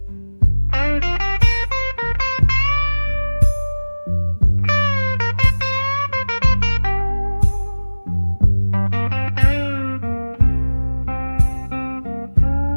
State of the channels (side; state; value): both; inverted; correlation -1.00